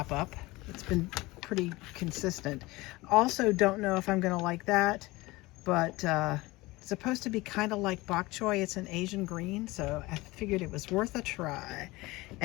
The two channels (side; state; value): right; quieter; 21.1 dB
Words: up. It's been pretty consistent. Also don't know if I'm gonna like that, but it's supposed to be kind of like bok choy. It's an Asian green, so I figured it was worth a try.